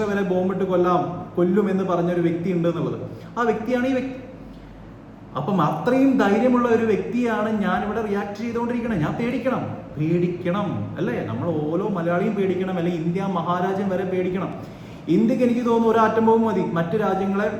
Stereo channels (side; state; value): both; identical; correlation 1.00